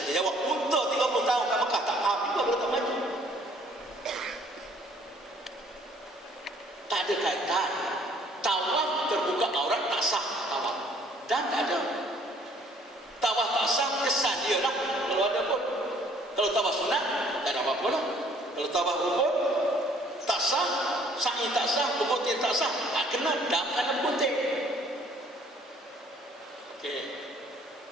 Dia jawab, untuk 30 tahun kat Mekah tak faham juga kalau tak maju. Tak ada kaitan. Tawaf terbuka aurat tak sah tawaf. Dan tak ada. Tawaf tak sah kesan dia lah. Kalau ada pun. Kalau tawaf sunat tak ada apa-apa lah. Kalau tawaf rukun tak sah, sa'i tak sah, berputih tak sah. Tak kena dam kena putih. Okey.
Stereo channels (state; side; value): normal; both; correlation 0.59